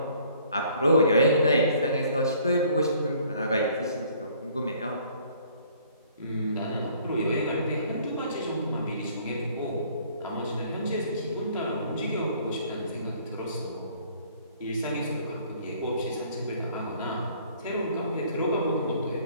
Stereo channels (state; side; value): inverted; both; correlation -0.58